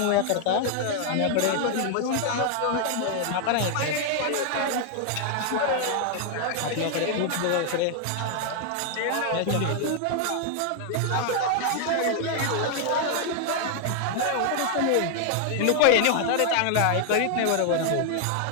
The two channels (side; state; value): both; different; correlation 0.00